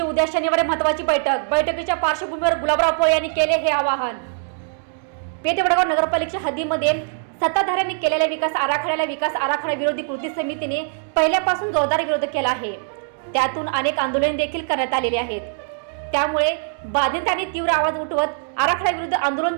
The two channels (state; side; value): silent; left; digital silence